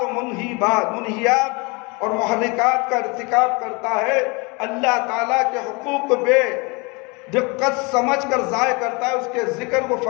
و منہیات اور محرکات کا ارتکاب کرتا ہے، اللہ تعالیٰ کے حقوق کو بے دقت سمجھ کر ضائع کرتا ہے، اس کے ذکر کو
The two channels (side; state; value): right; quieter; 28.8 dB